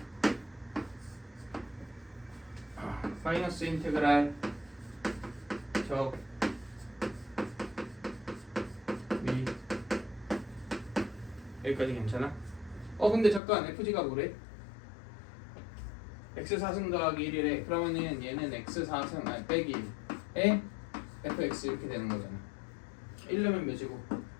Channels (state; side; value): drops out; right; at 13.4 s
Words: 마이너스 인테그랄 적 미 여기까지 괜찮아? 근데 잠깐 FG가 뭐래? x4승 더하기 1이래. 그러면은 얘는 x4승 빼기 1에 fx 이렇게 되는 거잖아. 1려면 몇이고?